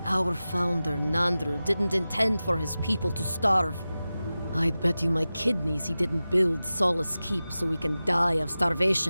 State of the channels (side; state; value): both; inverted; correlation -0.95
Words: Our founder, Nandru, didn't intend for his people to starve. I'd bet you my kidneys he didn't build Solace Keep so we can die of